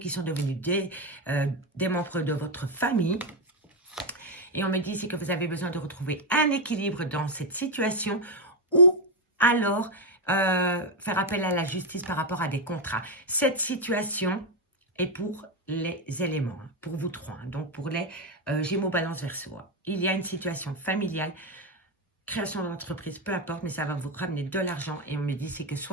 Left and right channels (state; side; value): normal; both; correlation 0.06